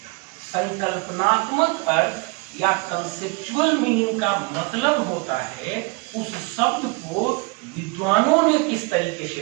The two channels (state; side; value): quieter; left; 27.5 dB